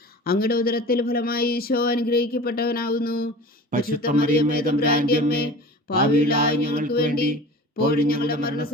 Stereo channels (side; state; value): both; normal; correlation 0.38